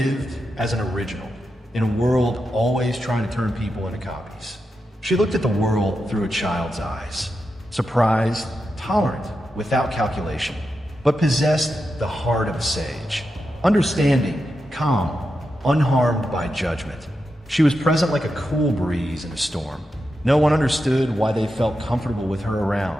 as an original in a world always trying to turn people into copies. She looked at the world through a child's eyes, surprised, tolerant, without calculation, but possessed the heart of a sage, understanding, calm, unharmed by judgment. She was present like a cool breeze in a storm. No one understood why they felt comfortable with her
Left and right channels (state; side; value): normal; both; correlation 0.88